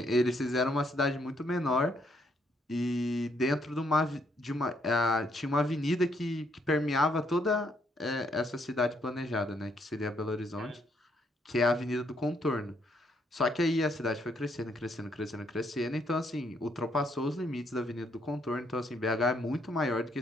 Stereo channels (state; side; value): normal; both; correlation 0.72